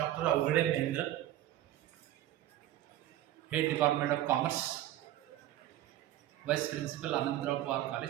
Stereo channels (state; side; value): quieter; left; 13.5 dB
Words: Awaghade Mahendra, Head Department of Commerce, Vice Principal Anandra